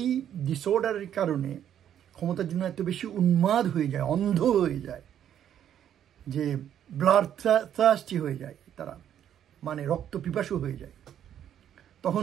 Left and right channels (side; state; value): left; quieter; 10.0 dB